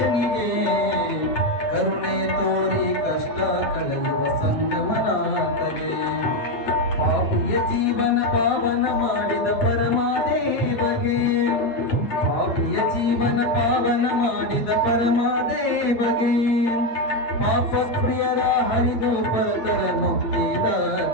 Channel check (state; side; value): late; right; 8.8 ms